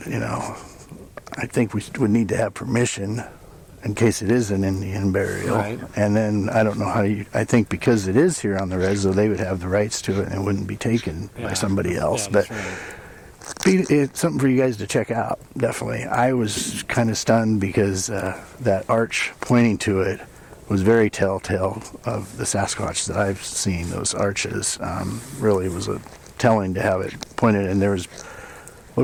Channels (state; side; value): identical; both; correlation 1.00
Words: I think we would need to have permission in case it is an Indian burial. Right. And then I don't know how I think because it is here on the res, though, they would have the rights to it and it wouldn't be taken by somebody else. Yeah, but right. it's something for you guys to check out, definitely. I was kind of stunned because that arch pointing to it was very telltale of the Sasquatch that I've seen. Those arches really was telling to have it pointed, and there was,